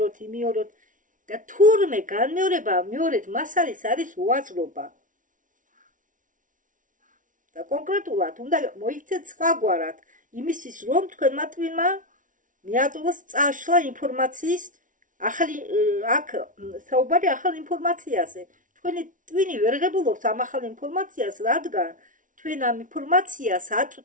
და თურმე განმეორება მეორედ მას არის უაზრობა. და კონკრეტულად უნდა მოიქცეთ სხვაგვარად იმისთვის, რომ თქვენმა ტვინმა მიაწვდოს წაშლა ინფორმაციის ახალი აქ საუბარი ახალ ინფორმაციაზე. თქვენი ტვინი ვერ ღებულობს ამ ახალ ინფორმაციას, რადგან თქვენ ამ ინფორმაციას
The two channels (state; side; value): late; left; 0.38 ms